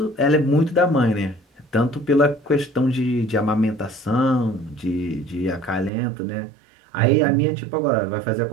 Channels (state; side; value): drops out; left; at 5.9 s